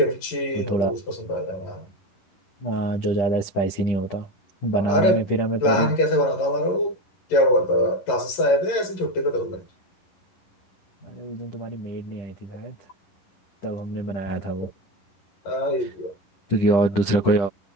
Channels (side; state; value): right; late; 11 ms